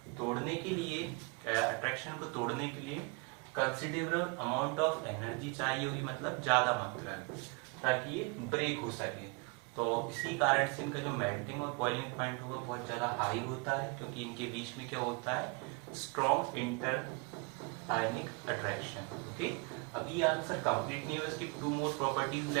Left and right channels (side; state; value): left; quieter; 31.1 dB